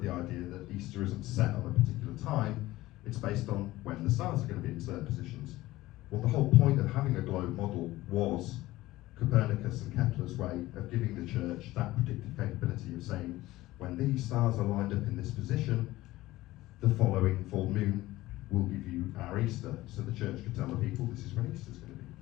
the idea that Easter isn't set on a particular time, it's based on when the stars are going to be in certain positions. Well, the whole point of having a globe model was Copernicus and Kepler's way of giving the church that predictive capability of saying, when these stars are lined up in this position, the following full moon will give you our Easter. So the church could tell the people, this is when Easter's going to be.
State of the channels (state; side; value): quieter; right; 17.4 dB